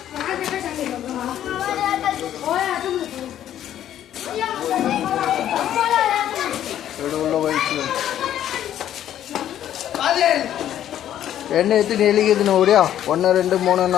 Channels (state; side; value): quieter; right; 11.2 dB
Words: என்ன எத்தனை எலிக்குதுன்னு ஓடியா? 1 2 3